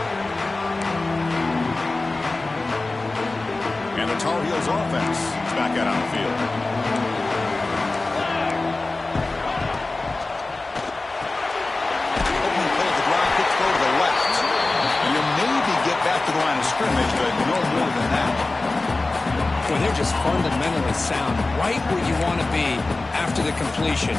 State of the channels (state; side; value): quieter; right; 3.2 dB